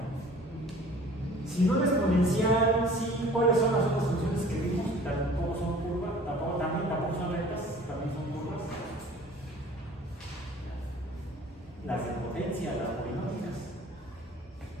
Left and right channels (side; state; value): both; normal; correlation 0.48